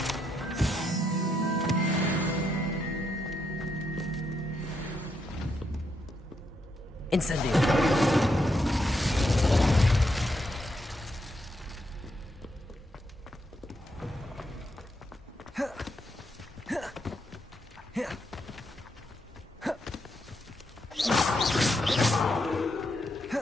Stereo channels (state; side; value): normal; both; correlation 0.79